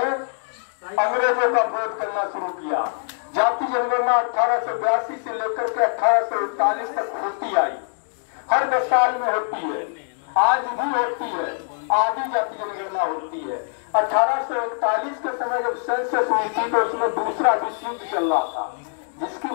अंग्रेजों का विरोध करना शुरू किया। जाति जनगणना 1882 से लेकर के 1841 तक होती आई, हर 10 साल में होती है, आज भी होती है, आधी जाति जनगणना होती है। 1841 के समय जब सेंसस हुई थी तो उसमें दूसरा विश्व युद्ध चल रहा था, जिसकी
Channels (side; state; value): right; silent; 63 dB below the other